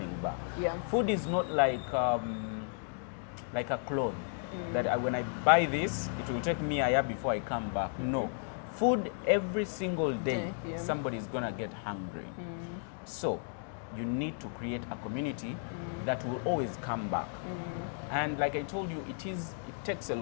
back. Yeah. Food is not like a clothes that when I buy this, it will take me a year before I come back. No. Food every single day, Yeah. somebody's gonna get hungry. So you need to create a community that will always come back. And like I told you, it takes a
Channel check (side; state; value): right; silent; 55 dB below the other